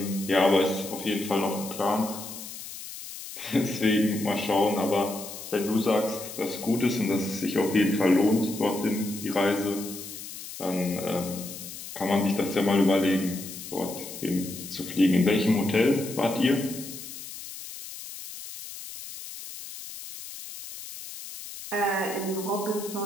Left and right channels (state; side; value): noise; left; hiss, 11 dB below the sound